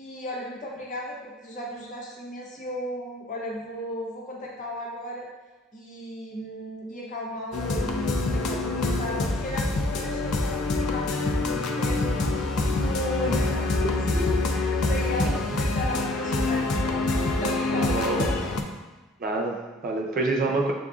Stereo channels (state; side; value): normal; both; correlation 0.57